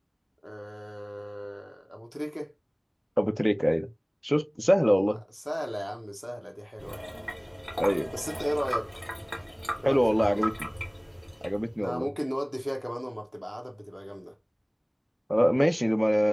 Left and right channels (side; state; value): both; identical; correlation 1.00